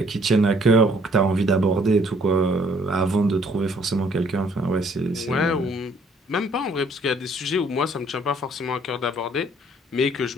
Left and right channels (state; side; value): normal; both; correlation 0.62